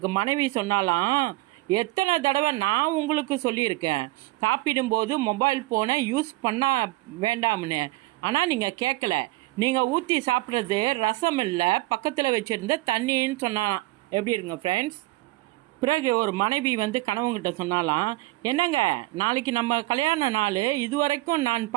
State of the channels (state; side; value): quieter; left; 19.3 dB